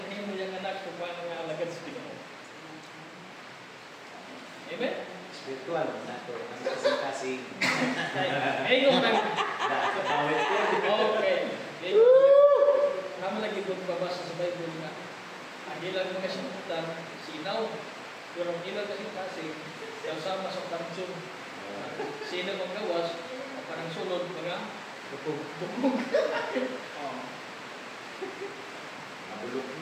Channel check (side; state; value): both; identical; correlation 1.00